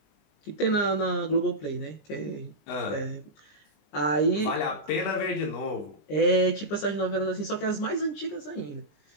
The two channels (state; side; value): late; right; 20 ms